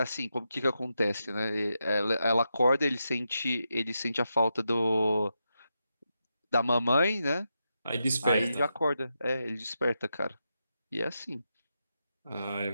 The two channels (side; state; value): both; inverted; correlation -0.86